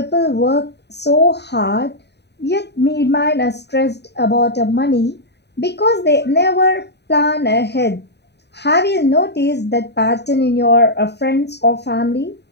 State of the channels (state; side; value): late; right; 0.49 ms